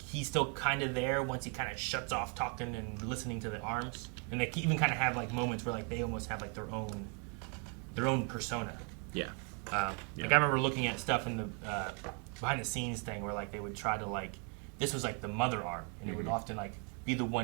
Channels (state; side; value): quieter; left; 37.7 dB